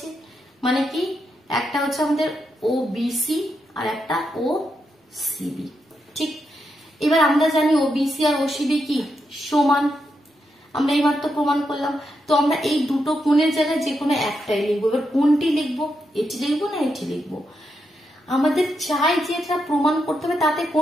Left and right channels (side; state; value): both; normal; correlation 0.83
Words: মানে কি একটা হচ্ছে আমাদের ও বিসি আর একটা ও সিবি। ঠিক, এবার আমরা জানি ও বিসি আর ও সিবি কি সমান, আমরা এইবার তো প্রমাণ করলাম। তো আমরা এই দুটো কোণের জায়গায় যে কোনো একটাই লিখবো। এবার কোনটি লিখবো? এটি লিখবো না এটি লিখবো? আমাদের চাই যে এটা প্রমাণ করতে হবে তাতে